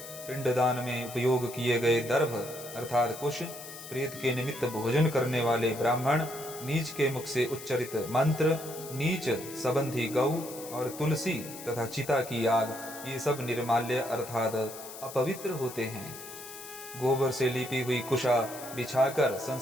पिंडदान में उपयोग किए गए दर्भ अर्थात कुश, प्रेत के निमित्त भोजन करने वाले ब्राह्मण, नीच के मुख से उच्चरित मंत्र, नीच संबंधी गौ और तुलसी तथा चिता की आग, ये सब निर्माल्य अर्थात अपवित्र होते हैं। गोबर से लिपी हुई कुशा बिछाकर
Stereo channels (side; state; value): left; noise; hiss, 13 dB below the sound